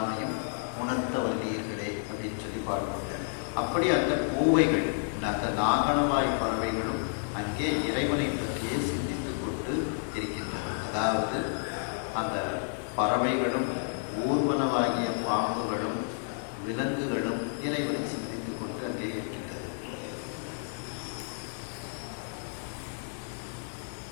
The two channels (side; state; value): right; silent; digital silence